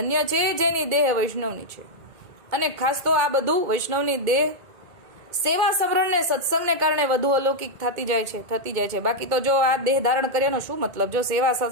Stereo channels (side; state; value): left; late; 2.2 ms